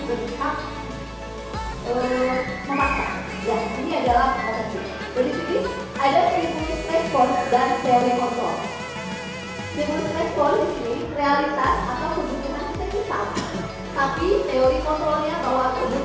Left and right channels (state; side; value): identical; both; correlation 1.00